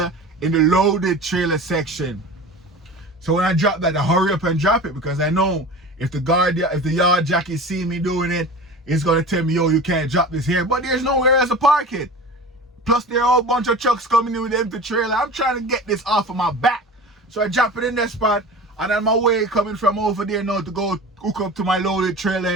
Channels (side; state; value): both; normal; correlation 0.35